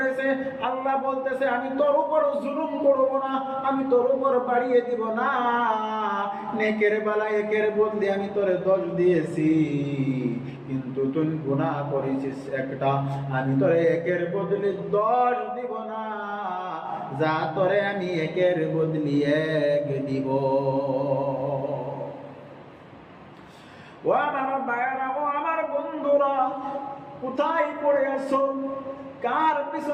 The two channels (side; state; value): both; identical; correlation 1.00